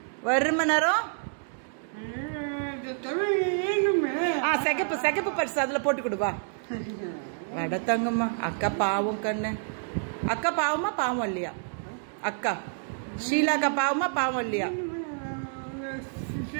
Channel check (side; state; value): left; silent; digital silence